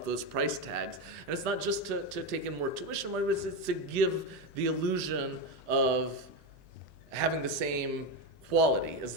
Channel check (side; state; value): right; late; 15 ms